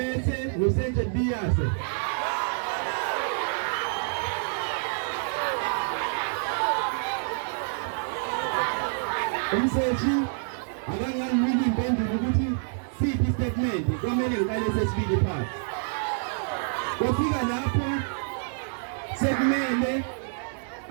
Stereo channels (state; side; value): silent; left; digital silence